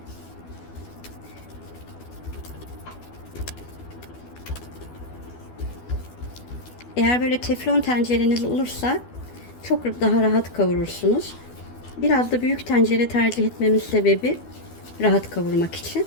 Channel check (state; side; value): late; right; 12 ms